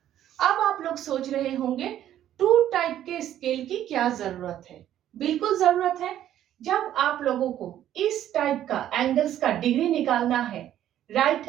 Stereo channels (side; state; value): left; quieter; 11.6 dB